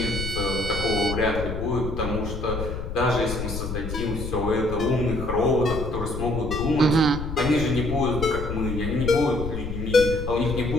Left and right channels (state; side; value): noise; left; rumble, 6 dB below the sound